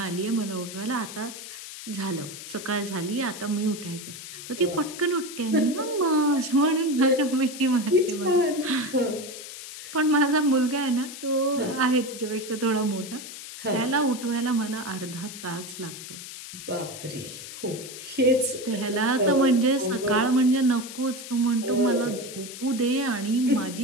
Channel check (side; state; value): left; noise; hiss, 12 dB below the sound